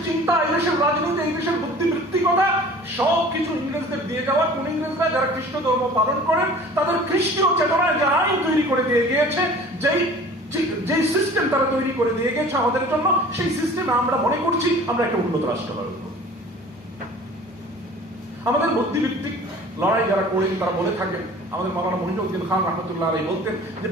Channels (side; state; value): both; normal; correlation 0.45